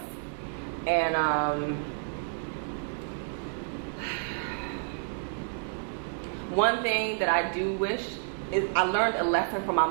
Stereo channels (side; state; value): left; silent; digital silence